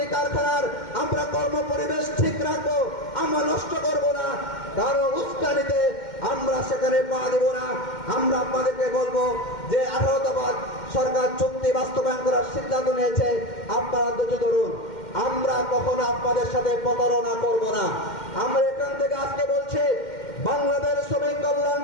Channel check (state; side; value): late; right; 2.1 ms